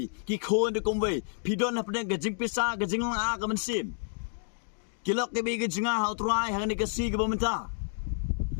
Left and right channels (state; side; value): silent; right; digital silence